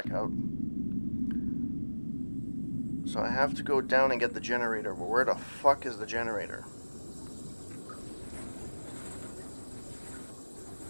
out. So I have to go down and get the generator. But where the fuck is the generator?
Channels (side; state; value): both; inverted; correlation -1.00